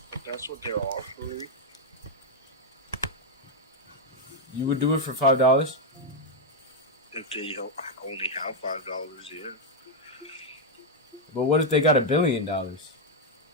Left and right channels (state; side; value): normal; both; correlation 0.01